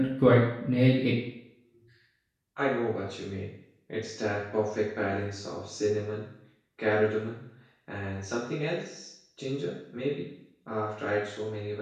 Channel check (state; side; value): identical; both; correlation 1.00